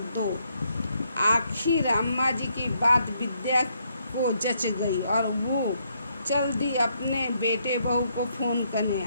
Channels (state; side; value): inverted; both; correlation -0.74